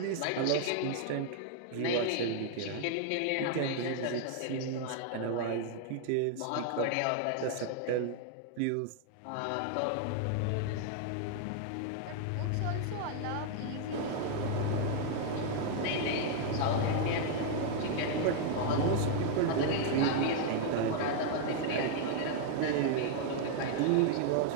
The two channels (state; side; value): different; both; correlation 0.00